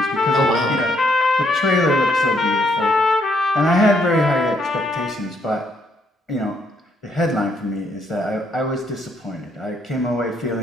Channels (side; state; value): both; normal; correlation 0.71